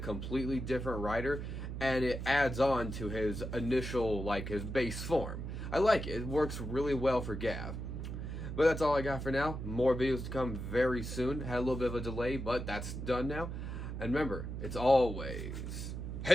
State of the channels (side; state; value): right; noise; hum, 6 dB below the sound